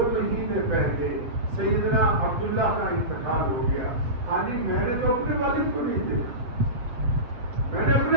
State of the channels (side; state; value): left; late; 7.9 ms